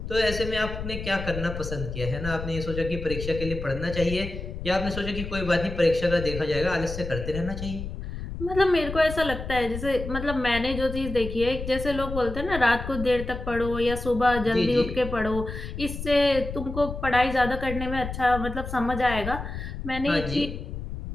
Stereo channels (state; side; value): noise; left; rumble, 7 dB below the sound